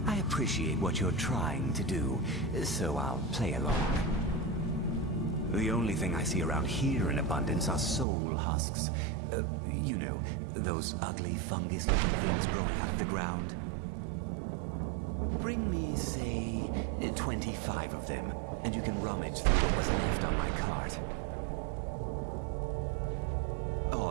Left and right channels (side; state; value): left; drops out; at 8.1 s